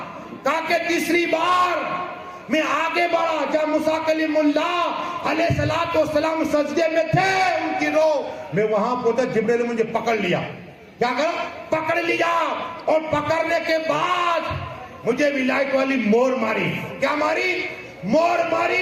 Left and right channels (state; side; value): identical; both; correlation 1.00